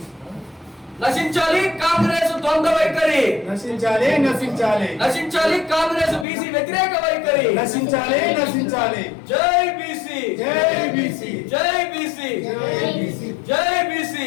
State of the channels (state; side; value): drops out; right; at 6.2 s